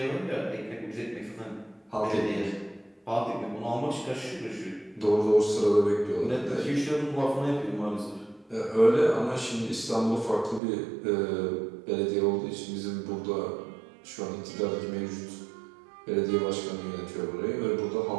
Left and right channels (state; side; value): drops out; left; at 10.6 s